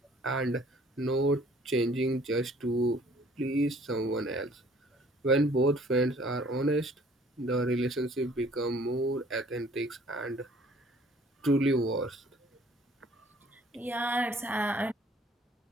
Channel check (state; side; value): normal; both; correlation 0.56